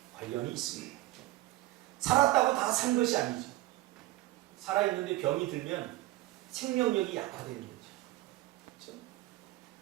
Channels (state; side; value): quieter; left; 17.4 dB